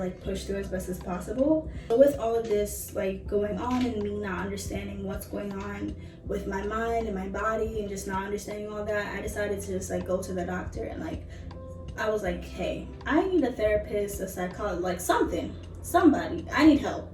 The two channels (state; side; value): identical; both; correlation 1.00